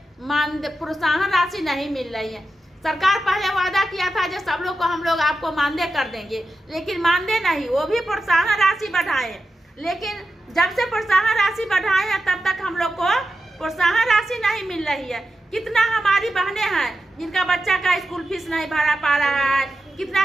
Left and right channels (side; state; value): both; normal; correlation 0.90